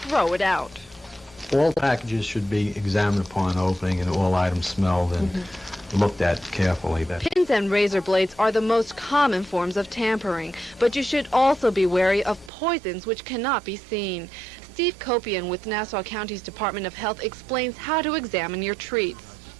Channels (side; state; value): left; drops out; at 12.5 s